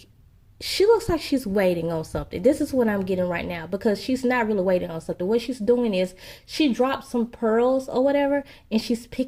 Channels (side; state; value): both; identical; correlation 1.00